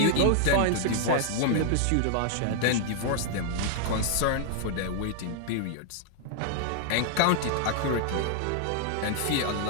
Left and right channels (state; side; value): different; both; correlation -0.01